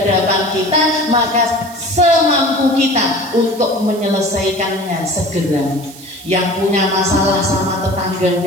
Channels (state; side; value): noise; right; hiss, 18 dB below the sound